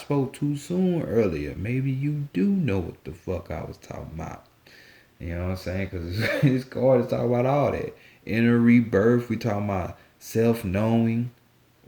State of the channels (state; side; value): identical; both; correlation 1.00